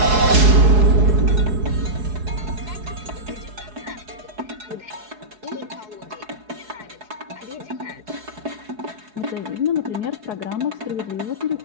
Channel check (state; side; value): late; left; 4.7 ms